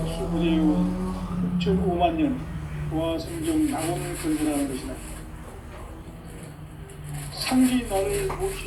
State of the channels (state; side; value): identical; both; correlation 1.00